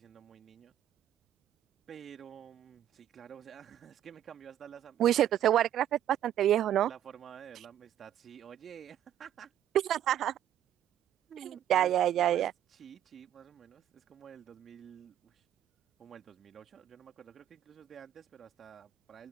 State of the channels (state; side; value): quieter; left; 11.2 dB